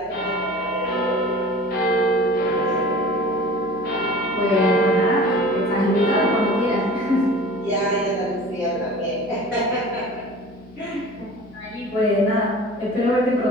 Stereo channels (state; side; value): noise; left; hum, 25 dB below the sound